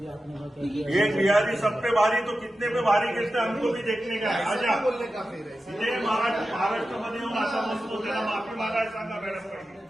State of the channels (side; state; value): both; normal; correlation 0.92